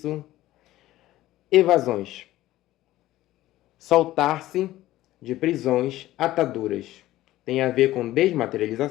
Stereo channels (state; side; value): quieter; right; 15.6 dB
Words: Evasões. Soltar-se de prisões, ataduras. Tem a ver com